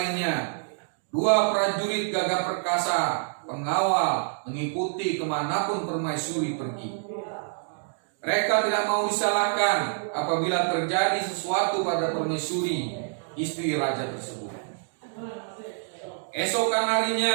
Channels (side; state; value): left; silent; digital silence